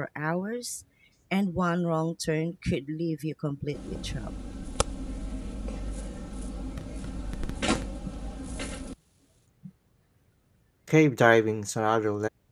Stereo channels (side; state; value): both; identical; correlation 1.00